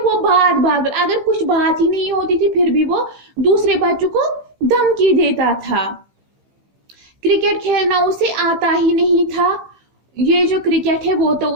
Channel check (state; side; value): late; left; 15 ms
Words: वो बात बात पर अगर कुछ बात ही नहीं होती थी फिर भी वो दूसरे बच्चों को धमकी देता था. क्रिकेट खेलना उसे आता ही नहीं था. ये जो क्रिकेट है वो तो